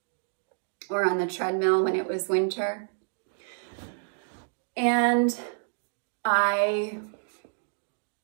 or on the treadmill when it was winter. And I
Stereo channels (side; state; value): left; silent; digital silence